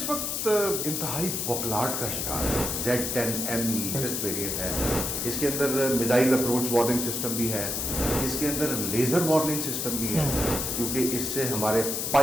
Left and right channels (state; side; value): noise; left; hiss, 1 dB below the sound